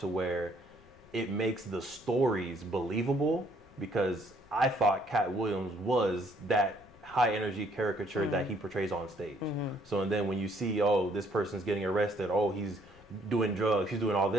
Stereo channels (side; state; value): left; noise; rumble, 26 dB below the sound